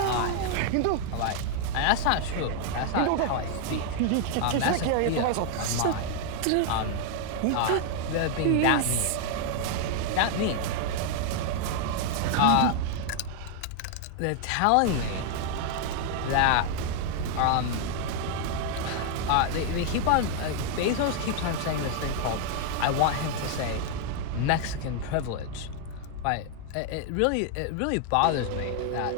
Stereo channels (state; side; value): different; both; correlation 0.00